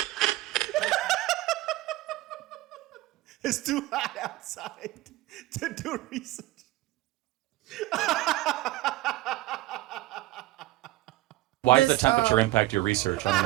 It's too hot outside to do research. Why does the temperature impact your research? I don't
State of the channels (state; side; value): quieter; left; 17.6 dB